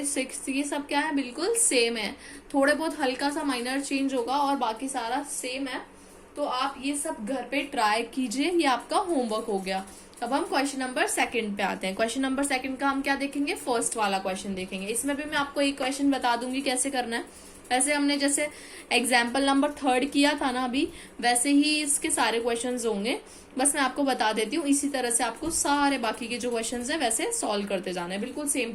सिक्स्थ, ये सब क्या है बिल्कुल सेम है। थोड़े बहुत हल्का सा माइनर चेंज होगा और बाकी सारा सेम है। तो आप ये सब घर पे ट्राई कीजिए, ये आपका होमवर्क हो गया। अब हम क्वेश्चन नंबर सेकंड पे आते हैं। क्वेश्चन नंबर सेकंड का हम क्या देखेंगे, फर्स्ट वाला क्वेश्चन देखेंगे। इसमें भी मैं आपको एक क्वेश्चन बता दूंगी कैसे करना है। वैसे हमने जैसे एग्जाम्पल नंबर थर्ड किया था ना अभी, वैसे ही इसके सारे क्वेश्चंस होंगे। बस मैं आपको बता देती हूँ, इसी तरह से आपको सारे बाकी के जो क्वेश्चंस हैं वैसे सॉल्व करते जाना है, बिल्कुल सेम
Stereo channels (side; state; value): both; identical; correlation 1.00